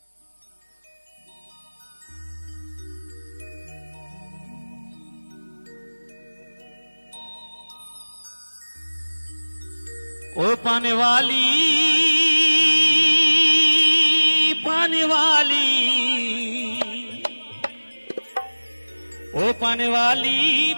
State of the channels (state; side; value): inverted; both; correlation -1.00